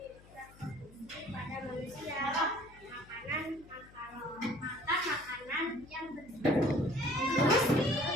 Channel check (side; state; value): left; noise; hum, 23 dB below the sound